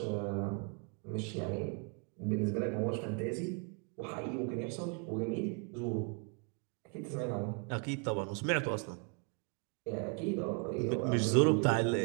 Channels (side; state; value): left; quieter; 37.6 dB